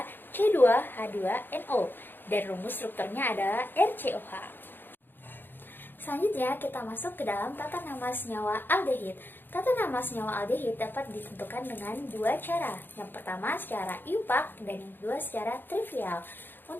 C2H2NO dan rumus strukturnya adalah RCOH. Selanjutnya kita masuk ke dalam tata nama senyawa aldehid. Tata nama senyawa aldehid dapat ditentukan dengan dua cara. Yang pertama secara iupac dan yang kedua secara trivial.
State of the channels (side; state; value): right; late; 0.096 ms